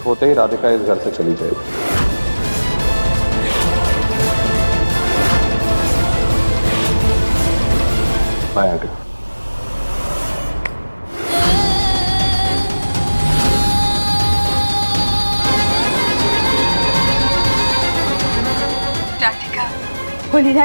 होते ही राधिका इस घर से चली जाएगी। Bye aunty. राधिका,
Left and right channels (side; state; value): both; inverted; correlation -1.00